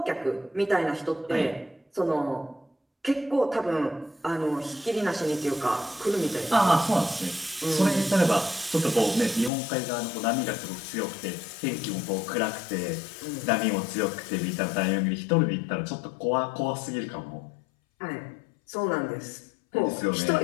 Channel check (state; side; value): drops out; right; at 9.5 s